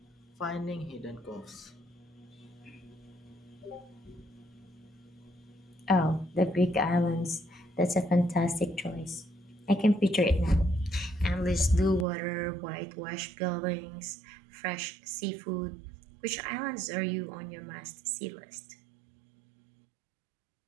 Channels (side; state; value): left; drops out; at 12.1 s